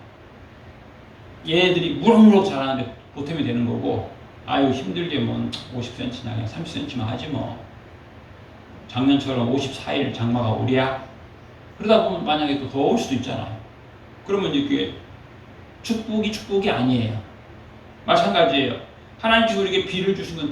얘네들이 무럭무럭 자라는데 보탬이 되는 거고, 아유 힘들게 뭐 50cm나 그냥 30cm만 하지 뭐, 작년처럼 54일 장마가 오랴? 그러다 보면 만약에 또 더울 수도 있잖아요. 그러면 이제 그게 축복이 아니에요. 마찬가지예요. 하나님께서 우리에게 비를 주신 건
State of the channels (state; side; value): identical; both; correlation 1.00